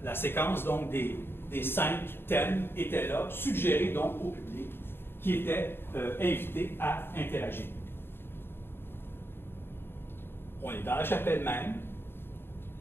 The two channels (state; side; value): late; right; 0.11 ms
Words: la séquence donc, des 5 thèmes était là, suggérée donc au public, qui était invité à interagir. On est dans la chapelle même.